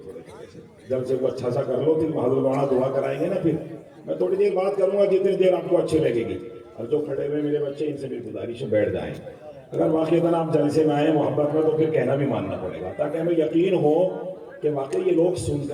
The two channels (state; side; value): identical; both; correlation 1.00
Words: تھوڑے تھوڑے سے، جلسے کو اچھا سا کر لو، پھر حضرت مولانا دعا کرائیں گے نا، پھر میں تھوڑی دیر بات کروں گا جتنی دیر آپ کو اچھی لگے گی۔ اور جو کھڑے ہوئے میرے بچے ان سے بھی گزارش ہے بیٹھ جائیں، اگر واقعی آپ جلسے میں آئے محبت میں تو پھر کہنا بھی ماننا پڑے گا، تاکہ ہمیں یقین ہو کہ واقعی یہ لوگ سن